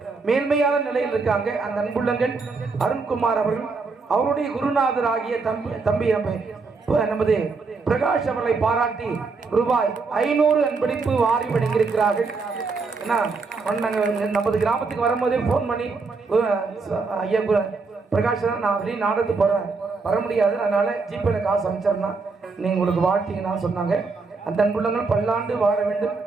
மேன்மையான நிலையில் இருக்காங்க. அந்த அன்புள்ளங்கள் அருண்குமார் அவர்கள் அவருடைய குருநாதர் ஆகிய தம்பி நமது பிரகாஷ் அவர்களை பாராட்டி ரூபாய் 500 அன்பளிப்பு வாரி வழங்கியிருக்கிறார்கள். நமது கிராமத்துக்கு வரும்போதே போன் பண்ணி ஐயா பிரகாஷ் நான் வெளியே நாடகத்துக்கு போறேன் வர முடியாது, அதனால ஜிபேல காசு அமைச்சிருந்தா நீங்க உங்களுக்கு வாழ்த்தீங்கன்னா சொன்னாங்க. அந்த அன்புள்ளங்கள் பல்லாண்டு வாழ வேண்டும்,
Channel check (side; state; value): left; quieter; 4.3 dB